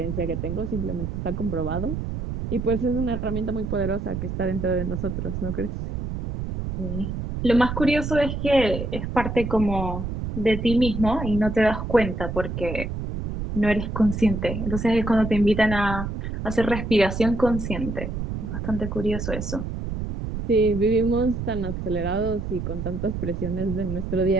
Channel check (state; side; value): noise; right; rumble, 5 dB below the sound